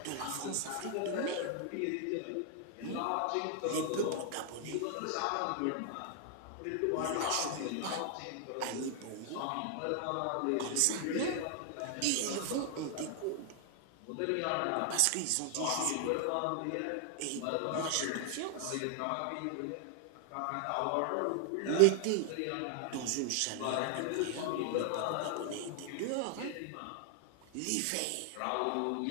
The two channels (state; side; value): different; both; correlation 0.00